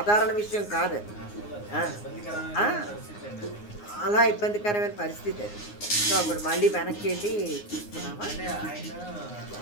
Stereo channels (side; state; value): right; late; 9.6 ms